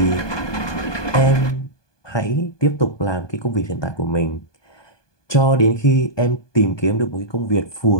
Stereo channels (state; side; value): late; right; 1.2 ms